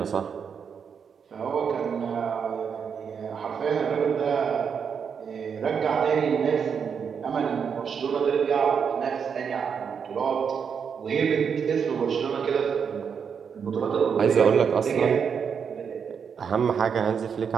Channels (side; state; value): left; quieter; 6.8 dB